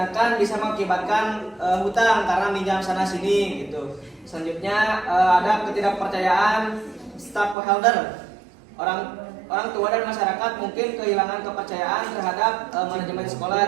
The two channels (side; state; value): left; drops out; at 7.6 s